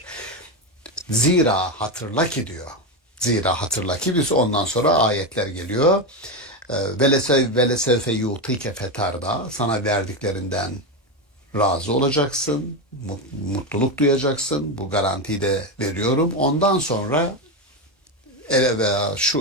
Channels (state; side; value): normal; both; correlation 0.12